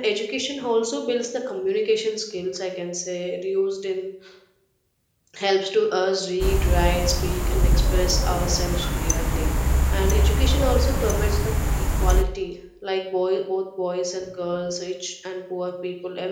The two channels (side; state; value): both; identical; correlation 1.00